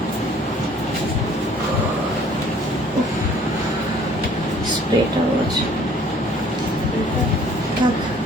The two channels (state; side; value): normal; both; correlation 0.55